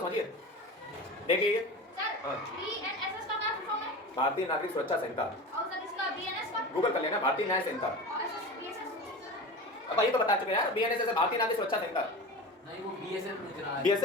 देखिए ये भारतीय नागरिक सुरक्षा संहिता, गूगल कर लेना, भारतीय न्याय संहिता। अब ये तो बता चुके यार, बीएनएस भारतीय नागरिक सुरक्षा संहिता, नहीं वो बीएसएफ लिख रहा है।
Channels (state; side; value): normal; both; correlation 0.31